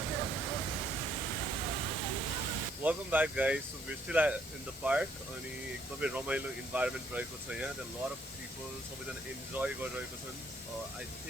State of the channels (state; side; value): normal; both; correlation 0.68